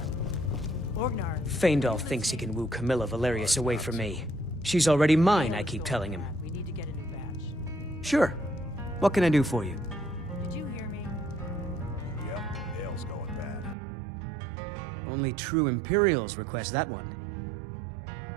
Feindal thinks he can woo Camilla Valerius away from me. She's already mine, I keep telling him. Sure. What can I do for you? Did you hear me? Yep, ale's going bad. I guess you don't have Only true Imperials request that one. Make sure we get a fresh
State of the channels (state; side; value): drops out; left; at 13.8 s